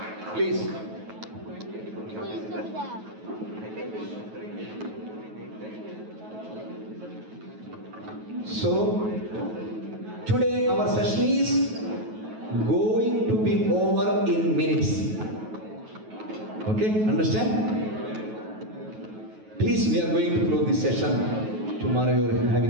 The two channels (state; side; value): late; left; 9.3 ms